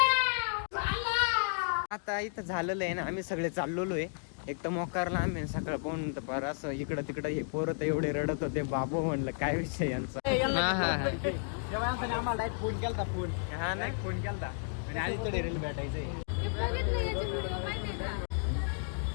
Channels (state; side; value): silent; right; digital silence